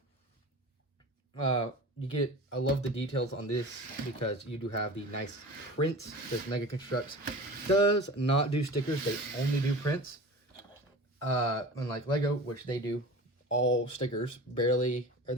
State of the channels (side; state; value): both; normal; correlation 0.36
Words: I love the details on this because you do have the nice prints. This Mega Construx does not do stickers; they only do prints. Unlike Lego, which they do all stickers, barely, or